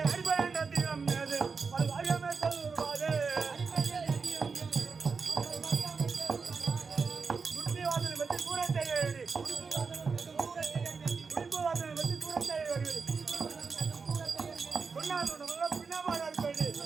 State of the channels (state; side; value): quieter; left; 5.0 dB